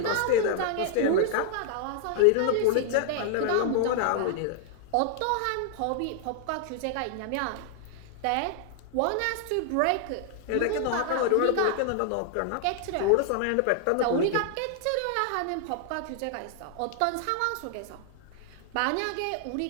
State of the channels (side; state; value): both; different; correlation 0.00